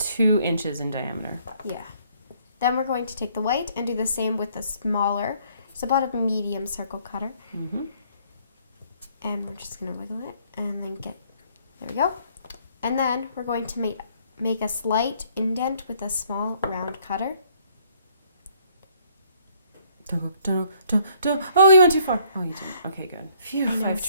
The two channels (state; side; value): inverted; both; correlation -0.63